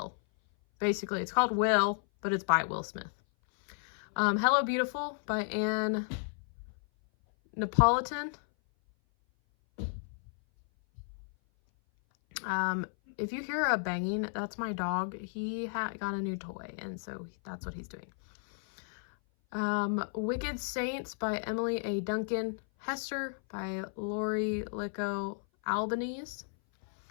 Basically, it's called Will, but it's by Will Smith. Hello Beautiful by Anne Napolitan. if you hear a banging, that's my dog. He got a new toy, and so that's what he's doing. Wicked Saints by Emily A. Duncan. Hester by Lori Licco Albanese.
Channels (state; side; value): silent; right; 56 dB below the other